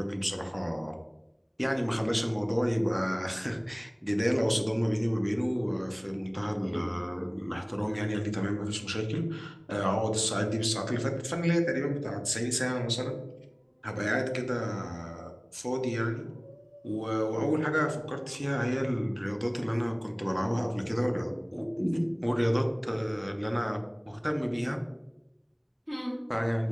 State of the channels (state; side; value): identical; both; correlation 1.00